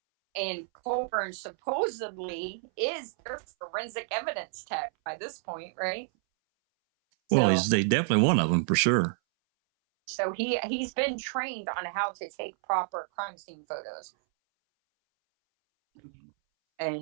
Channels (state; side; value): silent; left; 58 dB below the other